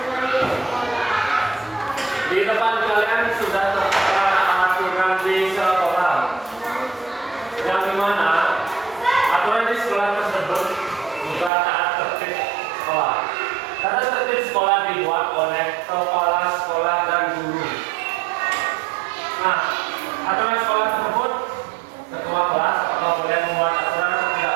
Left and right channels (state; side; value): drops out; left; at 11.5 s